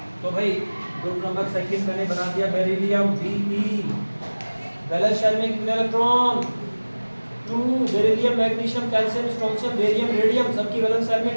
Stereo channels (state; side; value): inverted; both; correlation -1.00